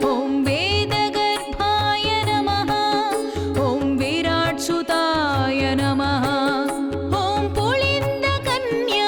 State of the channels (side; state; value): both; identical; correlation 1.00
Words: ॐ वेदगर्भाय नमः। ॐ विराट्सुताय नमः। ॐ